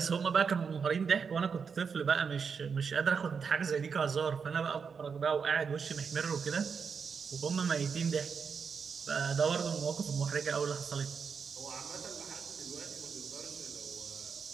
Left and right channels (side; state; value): left; quieter; 6.0 dB